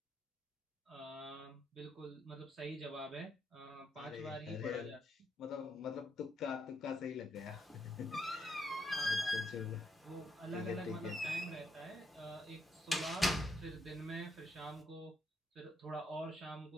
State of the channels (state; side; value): normal; both; correlation 0.77